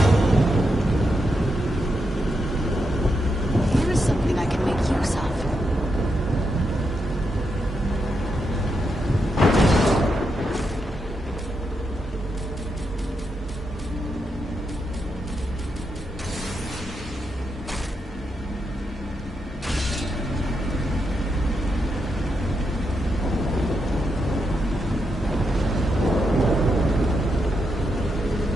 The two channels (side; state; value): both; normal; correlation 0.83